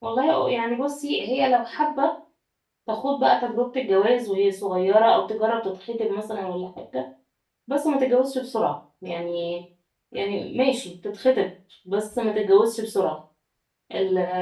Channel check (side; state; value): both; identical; correlation 1.00